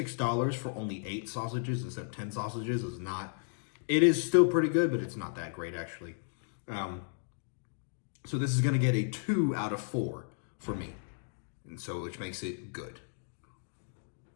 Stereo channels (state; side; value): silent; right; digital silence